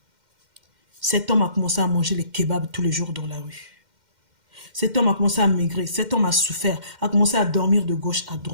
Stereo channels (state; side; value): late; left; 2.1 ms